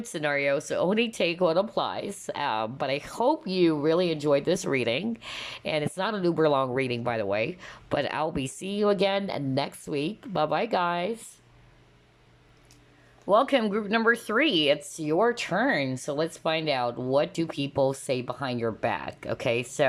scenarios, so only take what applies. But I hope you really enjoyed this reading. And it's not an uber long reading, by the way. But I'll be seeing you again next week. Bye-bye, guys. Welcome, group number 3. It's your turn. So let's find out, what do people say behind your back? Okay,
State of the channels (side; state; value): both; identical; correlation 1.00